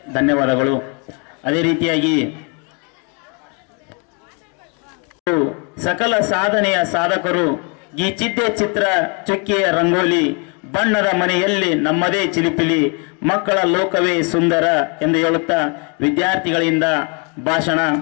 ಧನ್ಯವಾದಗಳು. ಅದೇ ರೀತಿಯಾಗಿ ಸಕಲ ಸಾಧನೆಯ ಸಾಧಕರು ಗೀಚಿದ್ದೆ ಚಿತ್ರ ಚುಕ್ಕಿಯ ರಂಗೋಲಿ ಬಣ್ಣದ ಮನೆಯಲ್ಲಿ ನಮ್ಮದೇ ಚಿಲಿಪಿಲಿ ಮಕ್ಕಳ ಲೋಕವೇ ಸುಂದರ ಎಂದು ಹೇಳುತ್ತಾ ವಿದ್ಯಾರ್ಥಿಗಳಿಂದ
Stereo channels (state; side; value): quieter; right; 35.4 dB